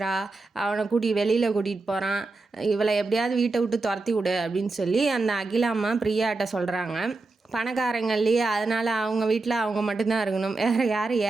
அவனை வெளியில் கூட்டிகிட்டு போகிறான், இவளை எப்படியாவது வீட்டை விட்டு துரத்தி விடு அப்படின்னு சொல்லி அந்த அகிலாம்மா பிரியாட்ட சொல்கிறாங்க. பணக்காரங்க இல்லையா, அதனால் அவங்க வீட்டில் அவங்க மட்டும்தான் இருக்கணும், வேறு யாரும்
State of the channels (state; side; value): quieter; left; 3.5 dB